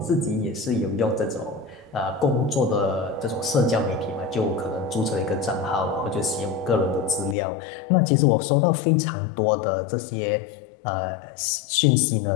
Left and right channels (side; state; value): right; drops out; at 7.4 s